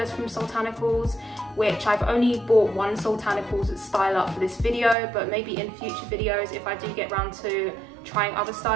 from Soultanicals, which I've only bought one Soultanicals styler for this video, but maybe in future videos, if I do get around to trying other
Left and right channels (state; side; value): drops out; left; at 5.0 s